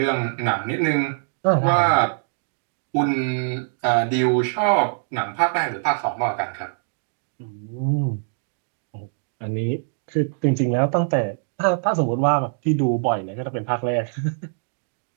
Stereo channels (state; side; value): silent; left; digital silence